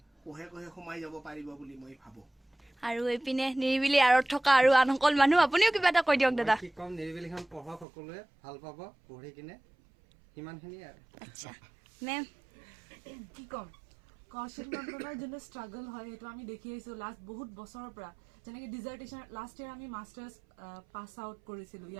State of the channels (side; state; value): left; drops out; at 7.9 s